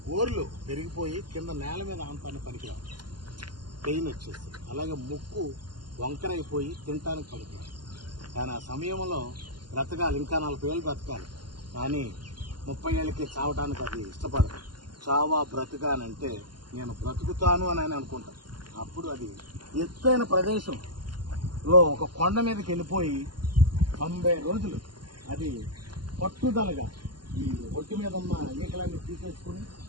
గోర్లు పెరిగిపోయి కింద నేల మీద ఆంతాన్ని పనికిరావు, పెయిన్ వచ్చేసి. అలాగే ముక్కు వంకరైపోయి తినటానికి పనికిరావు. కానీ ఆ సమయంలో బ్రతకాలి, ఇంకా 40 ఏళ్ళు బ్రతకాలి. కానీ 30 ఏళ్ళకి చావటానికి అది ఇష్టపడదు. చావా బ్రతకానంటే నేను బ్రతుకుతాను అని ఆయన అనుకుంటాను. అప్పుడు అది ఎత్తైన ప్రదేశంలో ఒక కొండ మీదకి వెళ్ళిపోయి 90 రోజులు అది పట్టుదలగా ఈ ఒంటి మీద ఉన్న ఈకలన్నీ తీసేసుకుని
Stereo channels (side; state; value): left; late; 0.71 ms